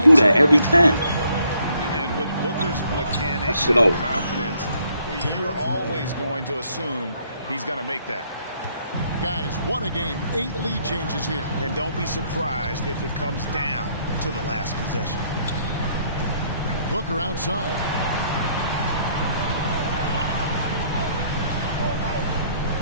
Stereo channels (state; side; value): inverted; both; correlation -0.67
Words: do that every time. And with Booker's mechanics Shit and over. confidence, you're always going to assume he's going to make that. Guys, what a game. 8 lead changes here. And don't be surprised if it comes down to the last possession. Booker outside.